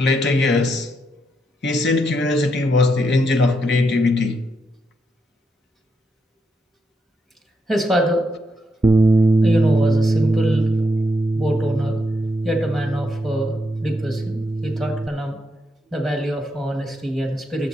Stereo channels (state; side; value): normal; both; correlation 0.80